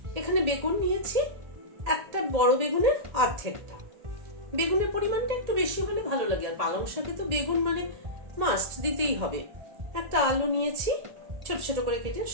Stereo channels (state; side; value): late; left; 1.8 ms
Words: এখানে বেগুন নিয়েছি, একটা বড় বেগুনের অর্ধেকটা। বেগুনের পরিমাণটা একটু বেশি হলে ভালো লাগে, আর পালং শাকে তো বেগুন মানে মাস্ট দিতেই হবে। একটা আলু নিয়েছি ছোট ছোট করে কেটে,